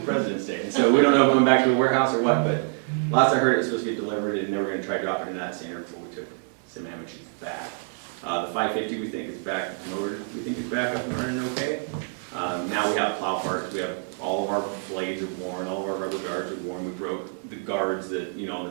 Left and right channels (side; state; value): left; silent; 56 dB below the other